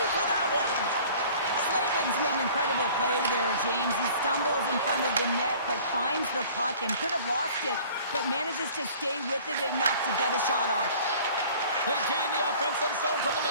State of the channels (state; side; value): inverted; both; correlation -0.48